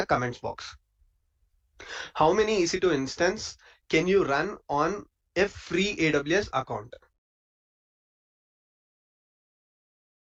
comments box? How many EC2 instance can you run on a free AWS account?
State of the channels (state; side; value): identical; both; correlation 1.00